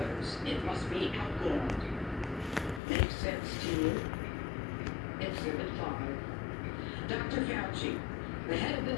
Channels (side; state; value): right; drops out; at 2.8 s